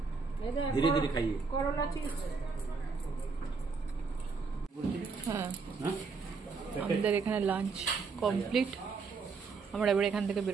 ধীরে ধীরে খাইয়ে। হ্যাঁ, আমাদের এখানে লাঞ্চ কমপ্লিট। আমরা এবার এখান থেকে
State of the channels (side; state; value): left; quieter; 4.8 dB